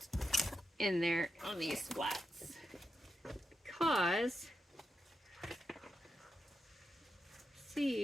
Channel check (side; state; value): both; normal; correlation 0.86